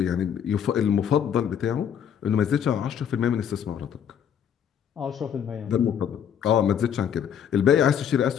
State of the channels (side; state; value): right; quieter; 8.6 dB